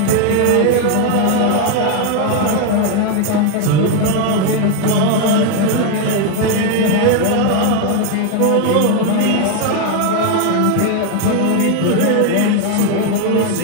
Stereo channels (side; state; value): both; different; correlation 0.01